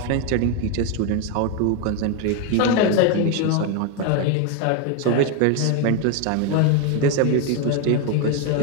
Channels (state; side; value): different; both; correlation 0.01